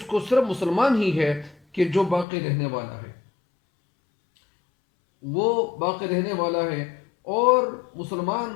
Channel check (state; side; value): drops out; right; at 2.2 s